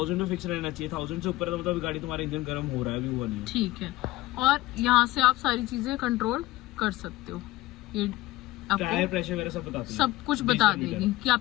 में फिक्स रहना चाहिए। 1000 से ऊपर है तो मतलब गाड़ी तुम्हारा इंजन गर्म हो रहा है, अभी हुआ नहीं। ठीक है, और यहाँ से आप सारी चीजें कंट्रोल कर सकते हो। ये टायर प्रेशर वगैरह सब बताती है, सब कुछ बता देगी कि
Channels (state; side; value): quieter; right; 18.0 dB